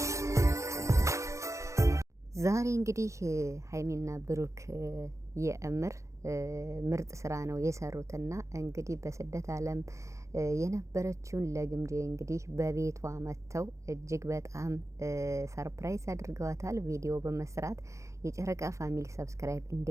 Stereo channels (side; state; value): left; late; 0.15 ms